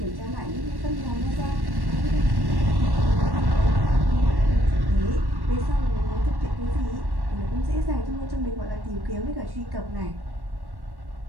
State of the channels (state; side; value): late; left; 1.1 ms